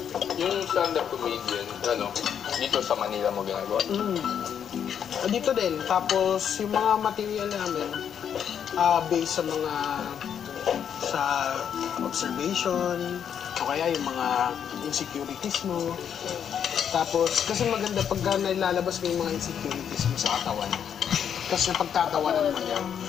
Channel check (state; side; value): quieter; right; 8.4 dB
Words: Yung stand-up comedian, dito sa Manila mo ginagawa? Dito din. Tapos yung mga material namin, based sa observation, o kaya yung mga insecurities mo. Tapos, kasi maganda pagka nailalabas mo yung mga insecurities mo sa katawan. Kasi napagtatawanan mo yan.